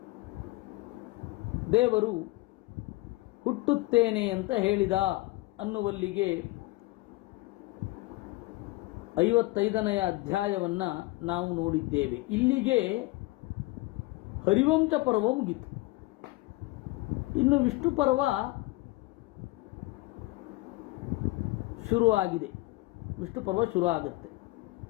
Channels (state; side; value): quieter; right; 20.4 dB